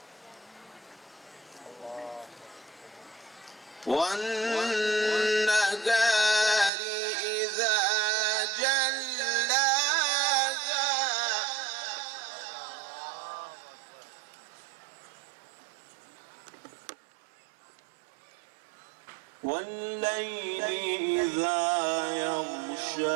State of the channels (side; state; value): left; drops out; at 6.7 s